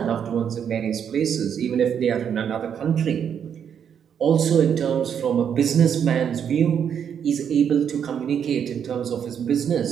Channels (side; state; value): left; quieter; 8.1 dB